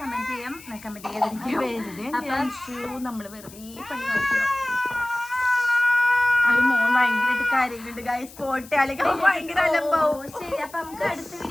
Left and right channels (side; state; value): left; noise; hiss, 20 dB below the sound